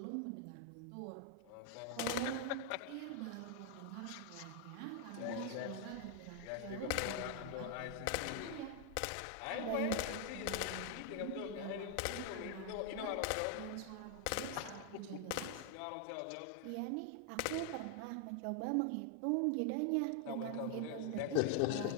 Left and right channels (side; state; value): both; different; correlation 0.00